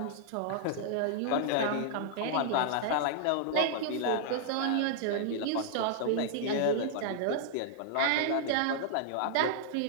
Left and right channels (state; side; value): different; both; correlation -0.01